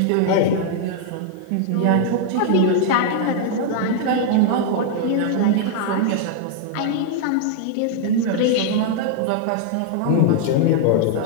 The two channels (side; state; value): both; different; correlation 0.00